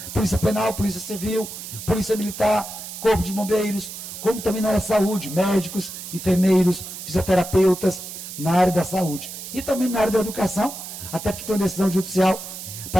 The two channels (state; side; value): noise; right; hiss, 10 dB below the sound